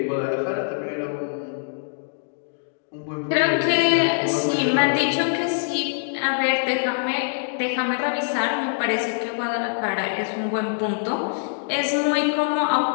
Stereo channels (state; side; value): silent; right; digital silence